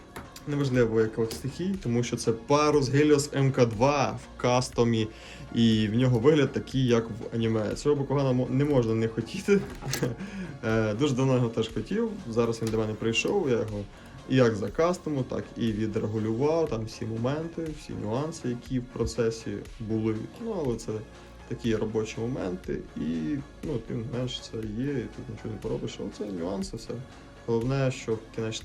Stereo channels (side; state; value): both; identical; correlation 1.00